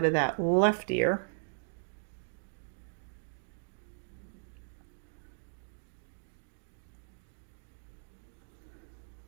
of that left ear.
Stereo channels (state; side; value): silent; left; digital silence